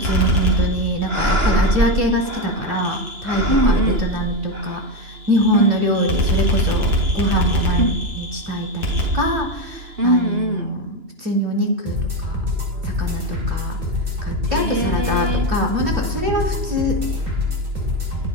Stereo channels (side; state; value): left; late; 2.9 ms